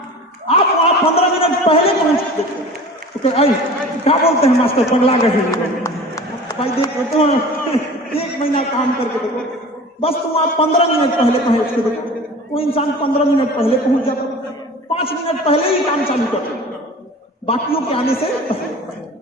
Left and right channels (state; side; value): normal; both; correlation 0.39